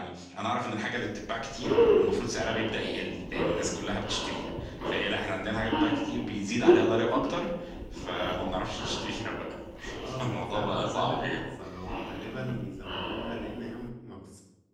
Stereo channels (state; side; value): identical; both; correlation 1.00